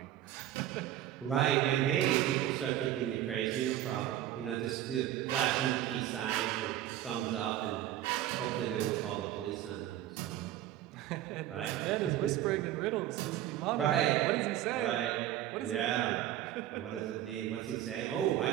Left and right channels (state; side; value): quieter; left; 12.8 dB